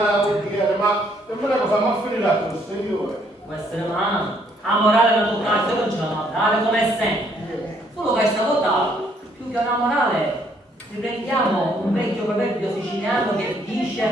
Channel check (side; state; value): both; normal; correlation 0.67